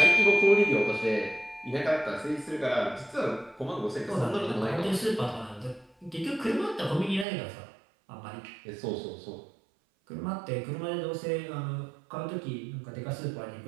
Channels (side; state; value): left; drops out; at 7.2 s